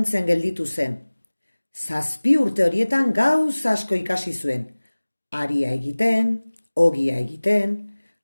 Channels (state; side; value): inverted; both; correlation -1.00